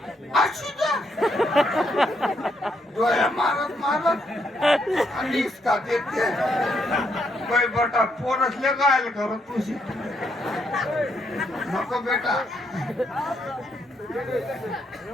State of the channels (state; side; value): normal; both; correlation 0.76